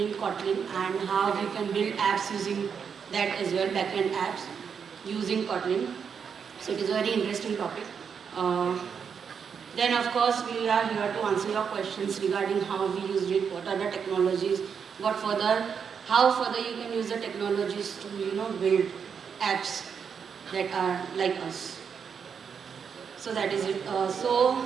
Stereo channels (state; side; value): quieter; left; 6.8 dB